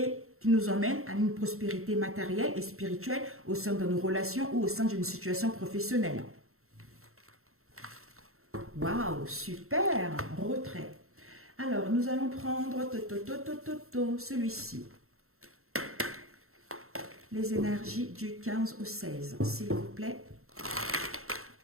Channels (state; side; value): late; left; 0.63 ms